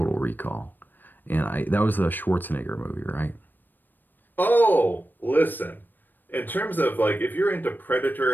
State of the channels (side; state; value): right; late; 0.091 ms